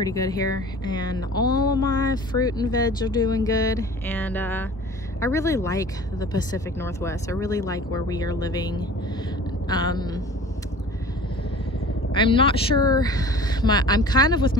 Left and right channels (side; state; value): both; normal; correlation 0.43